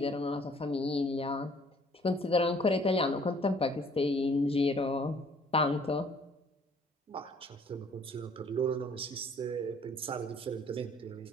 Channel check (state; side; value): normal; both; correlation 0.58